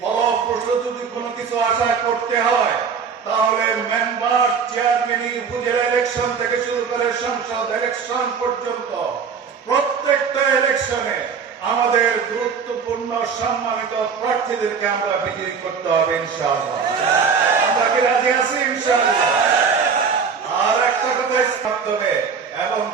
যদি কোনো কিছু আশা করতে হয় তাহলে মেম্বার, চেয়ারম্যান, উপজেলা ইলেকশন থেকে শুরু করে সংসদ ইলেকশন পর্যন্ত প্রত্যেকটা ইলেকশনে আমাদের গুরুত্বপূর্ণ সম্মানিত প্রার্থীদেরকে আমরা বিজয়ী করতে হবে ইনশাআল্লাহ। আমরা কি রাজি আছি ইনশাআল্লাহ? আর একটা কথা মাধ্যমে এবং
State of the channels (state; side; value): quieter; left; 6.0 dB